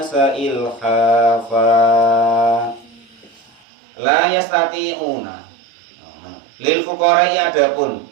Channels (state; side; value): drops out; left; at 3.5 s